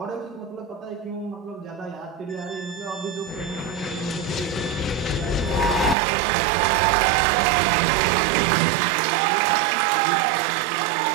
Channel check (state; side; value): drops out; left; at 6.0 s